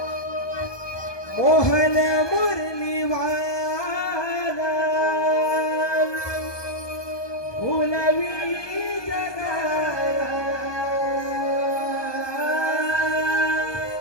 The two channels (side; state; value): right; late; 1.2 ms